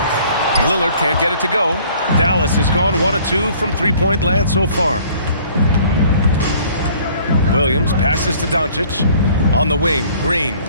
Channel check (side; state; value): both; inverted; correlation -0.55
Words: Lillard can't get it to go. Dallas has gone 1 of 2 from three-point land so far. Williams passes to Doncic. On the wing, Green.